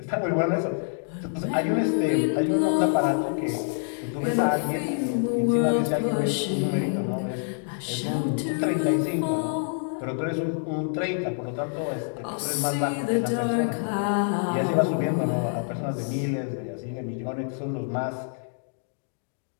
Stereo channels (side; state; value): right; silent; digital silence